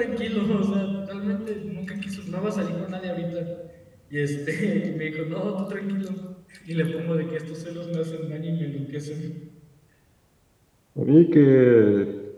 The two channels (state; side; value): identical; both; correlation 1.00